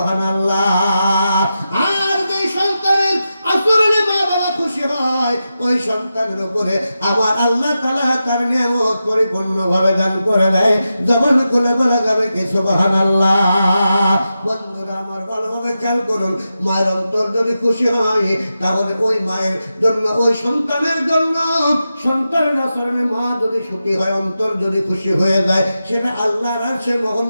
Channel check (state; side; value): inverted; both; correlation -0.90